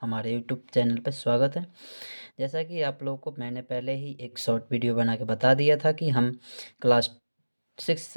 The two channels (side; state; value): both; inverted; correlation -1.00